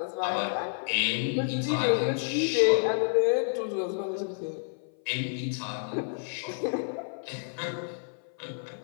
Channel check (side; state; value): right; silent; 56 dB below the other